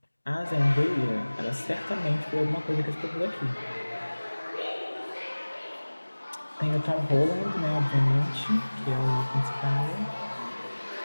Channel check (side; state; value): both; inverted; correlation -1.00